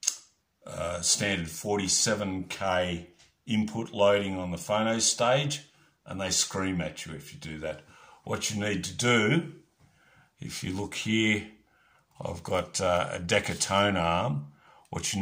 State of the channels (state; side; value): identical; both; correlation 1.00